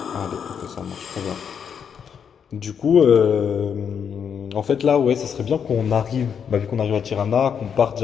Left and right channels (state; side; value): quieter; right; 7.4 dB